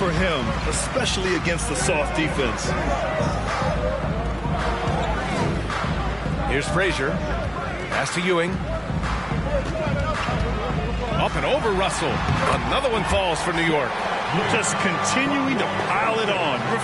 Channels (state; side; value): identical; both; correlation 1.00